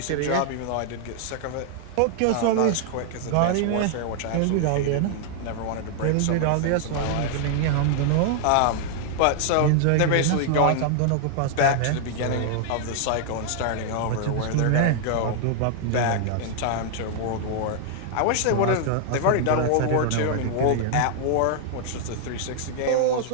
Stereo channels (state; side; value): different; both; correlation 0.00